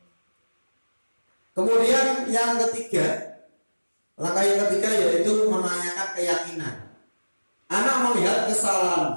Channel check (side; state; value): both; inverted; correlation -1.00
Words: Kemudian yang ketiga, langkah yang ketiga yaitu menanyakan keyakinan. Anak melihat